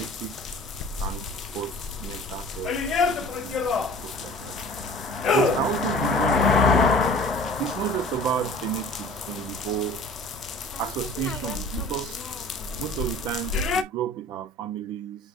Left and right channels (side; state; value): both; normal; correlation 0.45